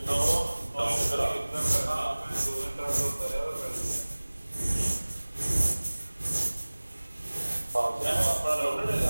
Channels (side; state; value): both; inverted; correlation -1.00